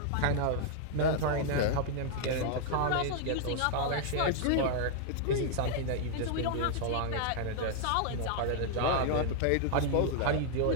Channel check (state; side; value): different; both; correlation -0.01